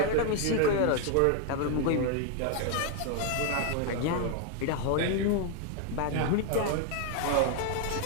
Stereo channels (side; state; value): both; different; correlation 0.00